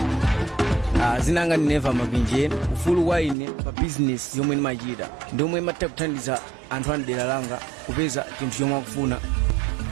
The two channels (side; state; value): left; drops out; at 3.4 s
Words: Zinanga ni Neva Mabinje. Ufulu kwa ine pa business yomwe nimachita ndomwe imatha kuthandiza anthu andera langa kupeza chinthu chomwe akufuna.